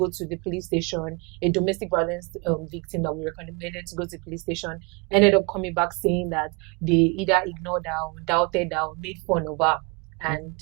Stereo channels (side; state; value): left; quieter; 31.0 dB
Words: to the police station, a domestic violence victim that we recommended to go to the police station ended up coming back saying that they either ignored her or doubted her or made fun of her. And